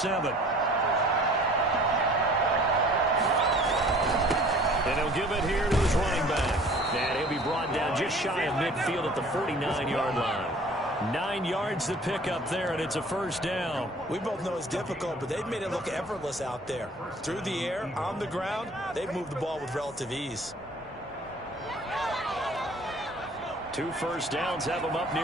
And he'll give it here to his running back. And he'll be brought down just shy of midfield at the 49-yard line. 9 yards to pick up there, and it's a first down. We both know it's difficult, but they've made it look effortless out there. Through the air, on the ground, they've moved the ball with relative ease. 2 first downs have them up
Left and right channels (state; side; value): normal; both; correlation 0.50